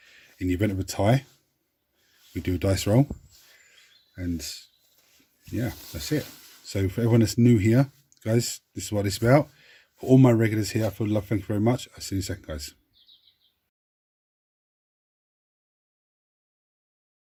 In the event of a tie, we do a dice roll, and yeah, that's it. So for everyone that's new here, guys, this is what it's about. For all my regulars here, I feel love, thank you very much. I'll see you in a second, guys.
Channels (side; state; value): both; identical; correlation 1.00